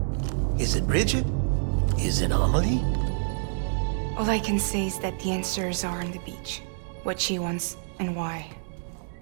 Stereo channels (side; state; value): left; silent; digital silence